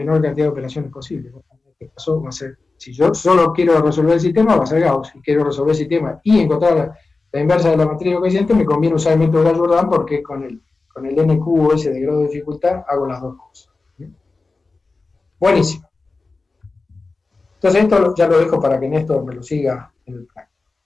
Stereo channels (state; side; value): quieter; right; 3.7 dB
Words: cantidad de operaciones posible. En este caso va a ser, si yo solo quiero resolver el sistema, va a ser Gauss. Si quiero resolver el sistema y encontrar la inversa de la matriz de coeficientes, me conviene usar el método de Gauss-Jordan porque con con el n cubo ese de grado de dificultad, hago las dos cosas. Buenísimo. Entonces esto ya lo dejo para que Néstor me lo siga en el plan.